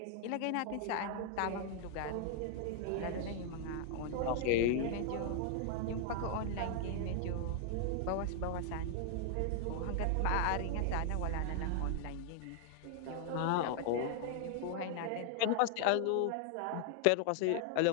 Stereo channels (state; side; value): different; both; correlation 0.00